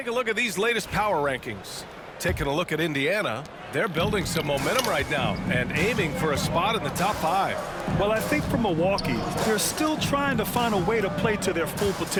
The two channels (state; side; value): identical; both; correlation 1.00